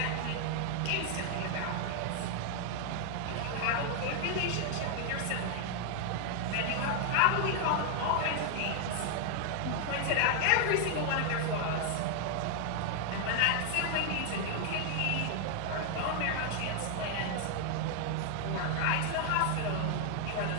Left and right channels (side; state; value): both; different; correlation 0.00